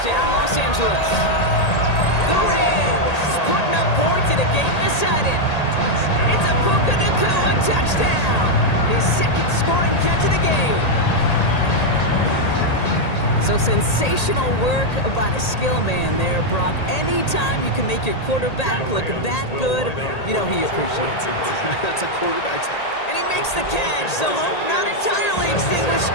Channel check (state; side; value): late; right; 1.8 ms